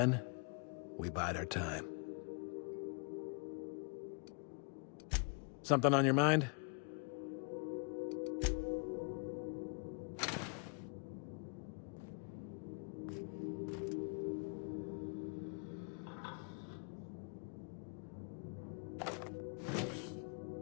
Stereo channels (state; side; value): quieter; right; 38.4 dB